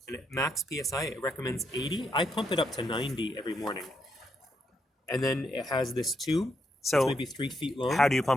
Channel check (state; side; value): normal; both; correlation 0.79